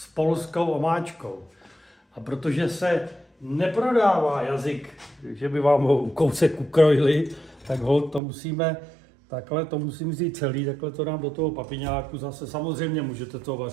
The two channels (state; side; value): drops out; left; at 8.2 s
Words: polskou omáčkou. A protože se neprodává jazyk, že by vám ho kousek ukrojili, tak to musím vzít celý, takhle to dám do toho papiňáku. Zase samozřejmě můžete to